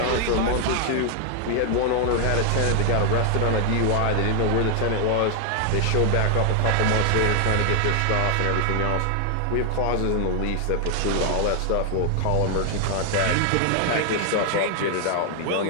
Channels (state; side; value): different; both; correlation 0.00